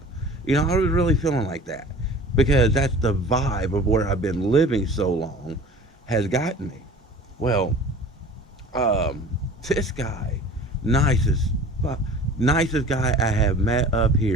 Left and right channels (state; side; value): normal; both; correlation 0.42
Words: You know, I was really feeling like that because that's the vibe of where I've been living so long has gotten me. Well, um, this guy, nicest, nicest guy I have met up